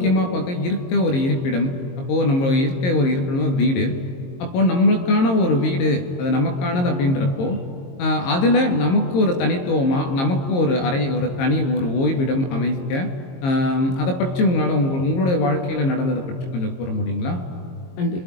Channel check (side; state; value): right; late; 22 ms